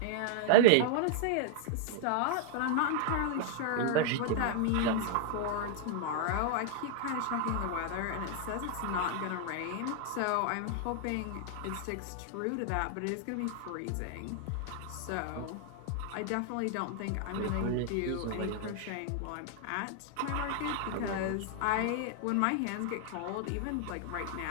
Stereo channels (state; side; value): different; both; correlation 0.00